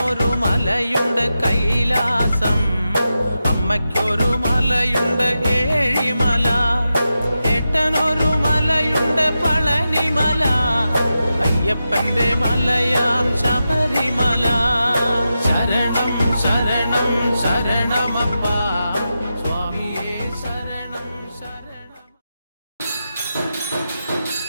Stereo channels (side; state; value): both; inverted; correlation -0.90